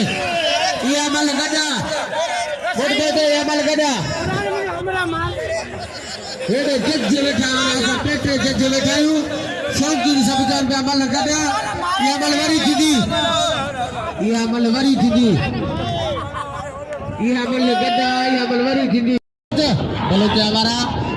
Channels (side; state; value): both; identical; correlation 1.00